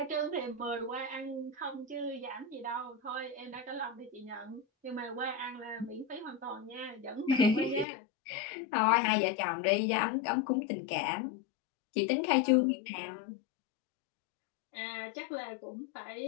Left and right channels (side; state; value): right; drops out; at 7.9 s